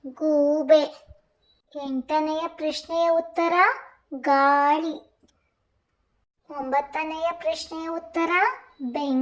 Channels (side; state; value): both; identical; correlation 1.00